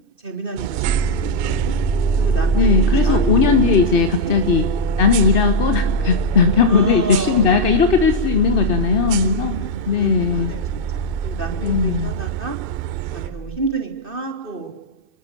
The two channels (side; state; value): left; late; 2.6 ms